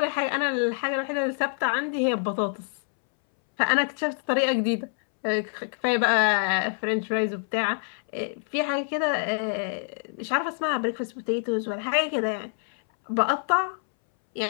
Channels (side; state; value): right; silent; 61 dB below the other